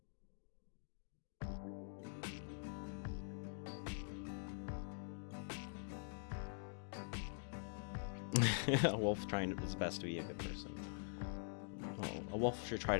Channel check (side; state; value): right; silent; digital silence